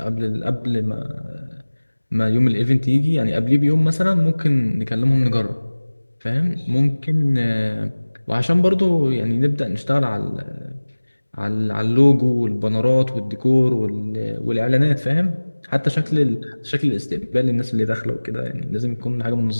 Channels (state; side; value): inverted; both; correlation -1.00